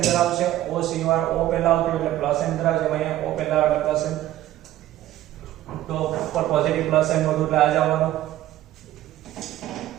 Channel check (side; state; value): left; quieter; 14.0 dB